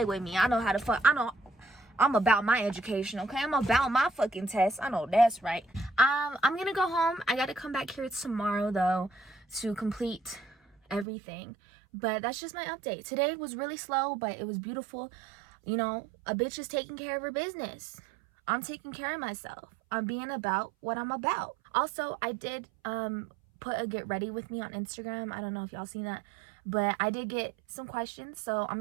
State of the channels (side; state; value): left; drops out; at 11.1 s